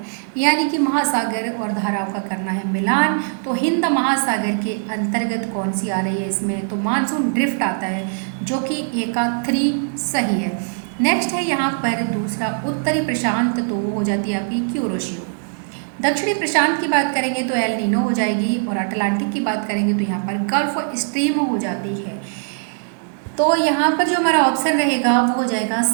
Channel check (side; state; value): left; silent; 65 dB below the other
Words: यानी कि महासागर और धाराओं का करना है मिलान। तो हिंद महासागर के अंतर्गत कौन सी आ रही है इसमें, तो मानसून ड्रिफ्ट आता है, जो कि ए का 3 सही है। नेक्स्ट है यहाँ पर दूसरा उत्तरी प्रशांत, तो वो हो जाती है आपकी क्यूरोशियो। दक्षिणी प्रशांत की बात करेंगे तो एल नीनो हो जाएगी, और अटलांटिक की बात करेंगे तो यहाँ पर गल्फ स्ट्रीम हो जाती है। तो यहाँ पर जो हमारा ऑप्शन रहेगा वो हो जाएगा